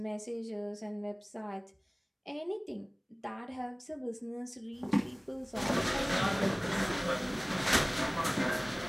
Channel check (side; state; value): both; identical; correlation 1.00